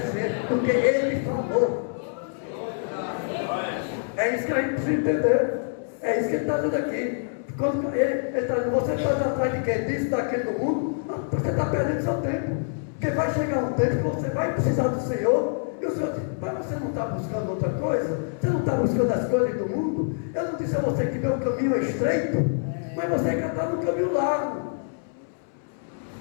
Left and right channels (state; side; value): silent; right; 61 dB below the other